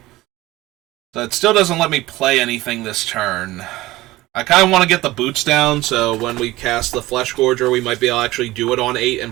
So it still doesn't let me play anything this turn. I kind of want to get the boots down, so when we cast the Flesh Gorger, we might be able to actually do it on 8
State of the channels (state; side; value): quieter; left; 18.1 dB